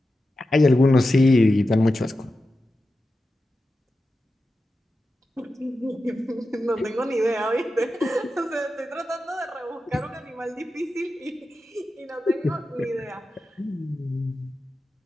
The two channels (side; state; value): both; normal; correlation 0.91